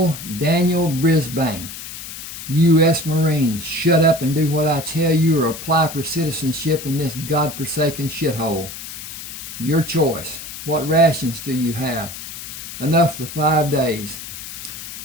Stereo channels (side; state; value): left; noise; hiss, 10 dB below the sound